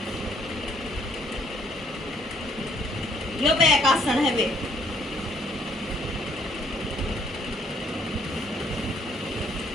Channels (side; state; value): both; normal; correlation 0.66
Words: यो बैक आसन है वे।